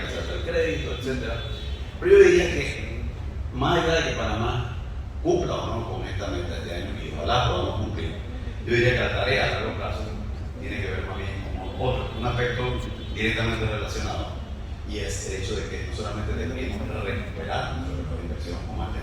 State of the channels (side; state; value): both; identical; correlation 1.00